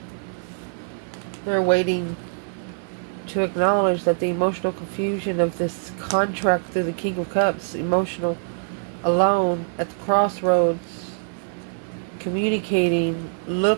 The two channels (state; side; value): silent; left; 63 dB below the other